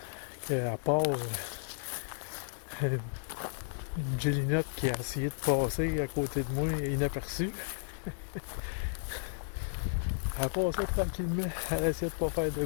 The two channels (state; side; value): silent; right; digital silence